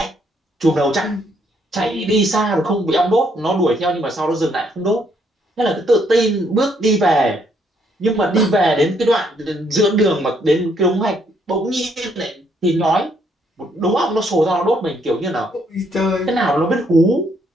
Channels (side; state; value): both; normal; correlation 0.70